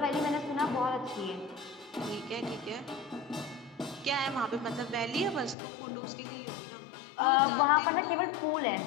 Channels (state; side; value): drops out; right; at 5.6 s